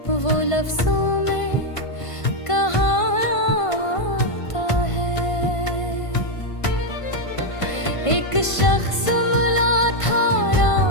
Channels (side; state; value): right; late; 1.5 ms